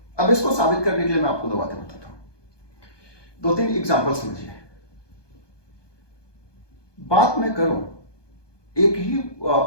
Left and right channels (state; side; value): late; right; 1.2 ms